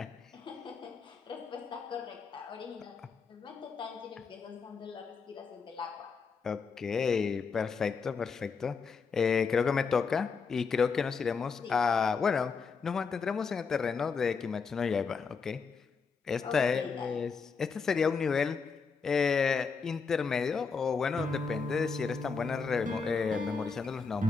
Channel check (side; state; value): right; quieter; 5.3 dB